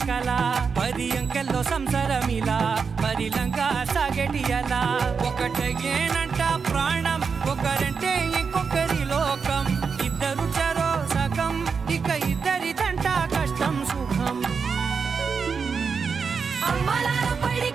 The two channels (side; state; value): left; quieter; 5.6 dB